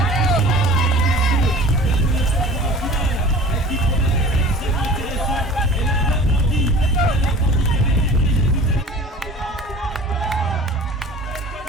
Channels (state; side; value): normal; both; correlation 0.43